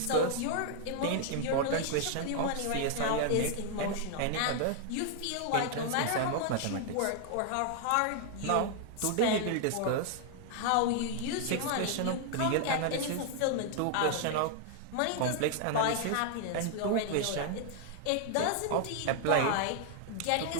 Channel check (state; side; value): different; both; correlation 0.00